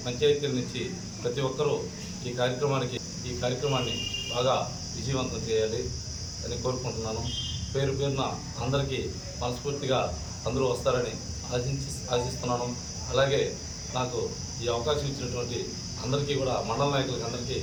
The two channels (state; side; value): identical; both; correlation 1.00